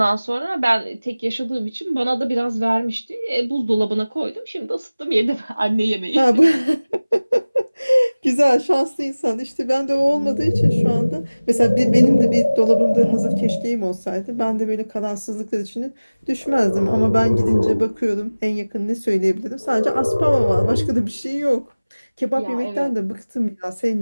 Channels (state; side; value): inverted; both; correlation -0.99